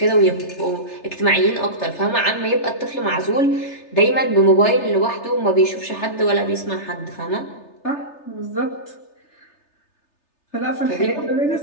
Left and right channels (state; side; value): late; right; 3.3 ms